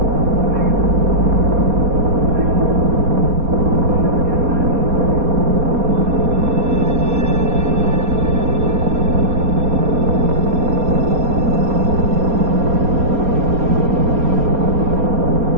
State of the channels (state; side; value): late; left; 4.2 ms